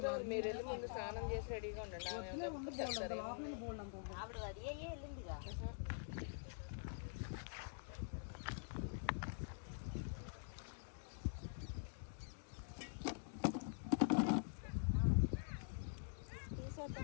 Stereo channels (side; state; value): right; silent; digital silence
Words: మీరు వెళ్ళి ముందు స్నానం చేసి రెడీగా ఉండండి. ఆవిడ అది వెళ్ళిందిగా.